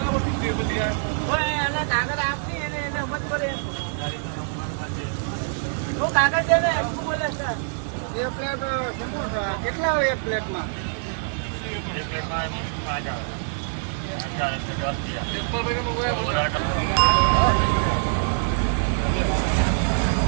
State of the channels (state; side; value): silent; left; digital silence